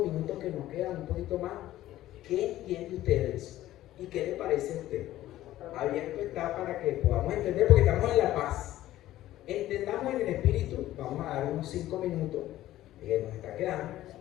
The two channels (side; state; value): right; quieter; 14.5 dB